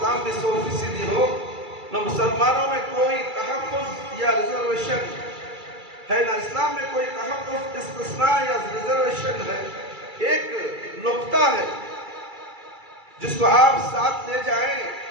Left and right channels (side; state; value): left; late; 2.3 ms